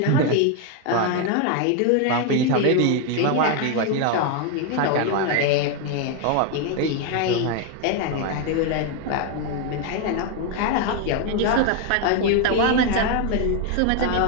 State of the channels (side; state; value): both; different; correlation 0.01